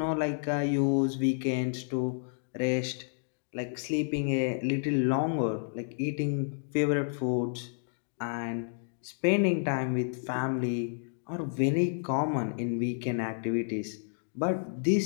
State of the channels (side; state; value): right; silent; digital silence